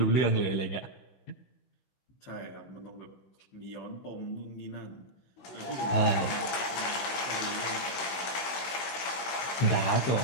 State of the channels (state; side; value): late; right; 16 ms